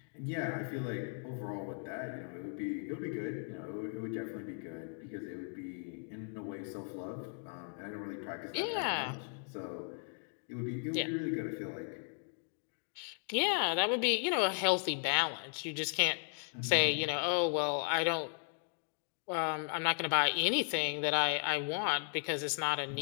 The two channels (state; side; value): silent; right; 54 dB below the other